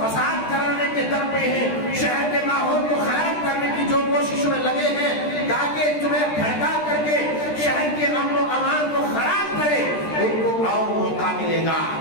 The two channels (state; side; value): late; right; 13 ms